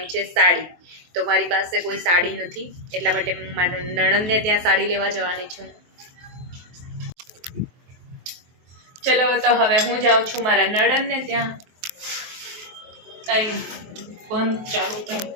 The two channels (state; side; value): late; left; 23 ms